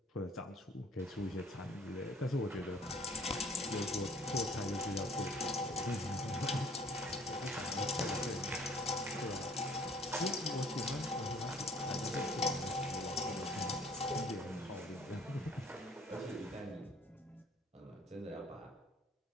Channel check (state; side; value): normal; both; correlation 0.56